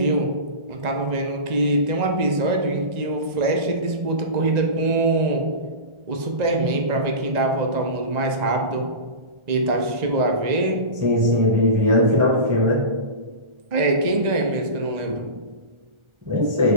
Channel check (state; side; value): late; left; 1.4 ms